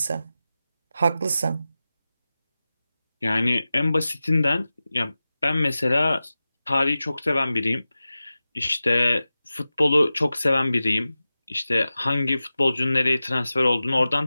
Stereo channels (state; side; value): inverted; both; correlation -0.95